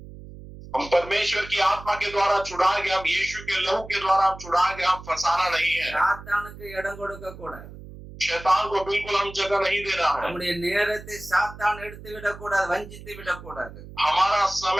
हम परमेश्वर की आत्मा के द्वारा छुड़ाए गए, हम यीशु के लहू के द्वारा हम छुड़ाए गए, हम फसाना नहीं है। சாத்தானுக்கு இடம் கொடுக்க கூடாது. शैतान को बिल्कुल हम जगह नहीं देना है। நம்முடைய நேரத்தை சாத்தான் எடுத்து விடக்கூடாது, வஞ்சித்து விடக்கூடாது. हमारा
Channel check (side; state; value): right; noise; hum, 15 dB below the sound